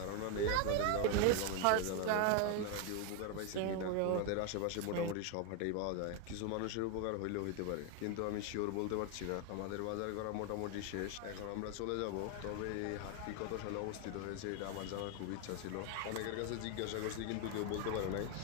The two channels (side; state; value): both; different; correlation 0.01